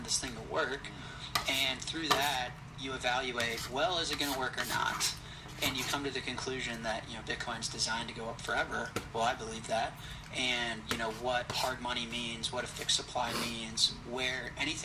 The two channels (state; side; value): identical; both; correlation 1.00